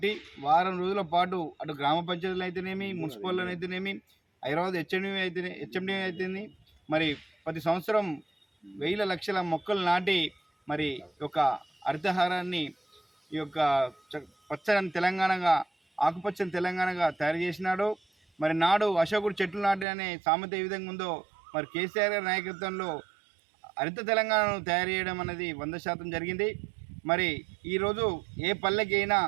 వారం రోజుల పాటు అటు గ్రామ పంచాయతీలు అయితేనేమి, మున్సిపల్లో అయితేనేమి, హైదరాబాద్ హెచ్ఎండి అయితేనే మరి ప్రతి సంవత్సరం వేల లక్షల మొక్కలు నాటి మరి యొక్క హరితహారాన్ని ఈ యొక్క పచ్చని తెలంగాణగా, ఆకుపచ్చని తెలంగాణగా తయారు చేసినాడు. మరి నాడు అశోకుడు చెట్లు నాటి అనే సామెత ఏ విధంగా ఉందో మరి కేసీఆర్ గారి నాయకత్వంలో హరిత తెలంగాణను తయారు చేయడం అనేది 100% జరిగింది. మరి ఈరోజు ఏ పల్లెకి అయినా,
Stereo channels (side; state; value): left; drops out; at 19.9 s